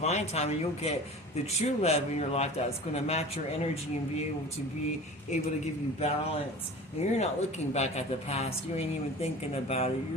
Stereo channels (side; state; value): both; normal; correlation 0.38